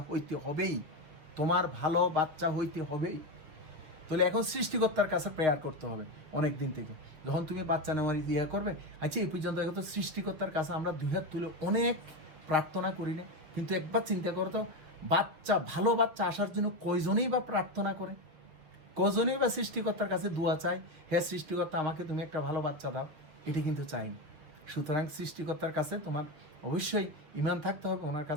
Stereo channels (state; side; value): late; left; 7.0 ms